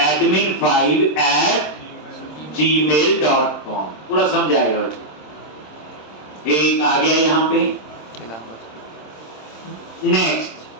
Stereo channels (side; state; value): right; late; 26 ms